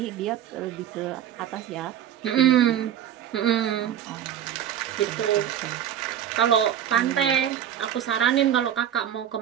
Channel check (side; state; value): left; quieter; 10.2 dB